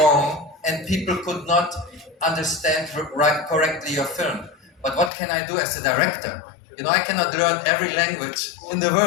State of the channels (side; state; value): right; drops out; at 5.1 s